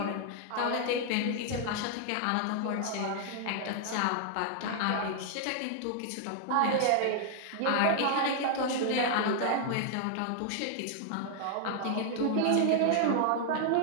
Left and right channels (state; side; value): different; both; correlation 0.00